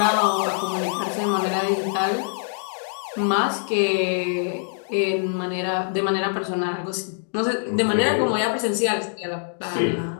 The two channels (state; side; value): silent; right; digital silence